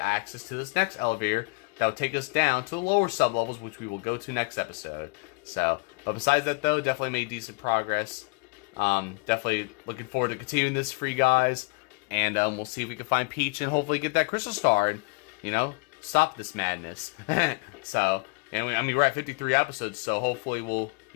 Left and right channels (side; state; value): right; quieter; 29.6 dB